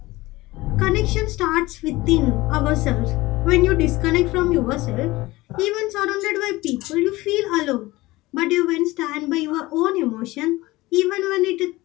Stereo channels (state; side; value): quieter; right; 19.7 dB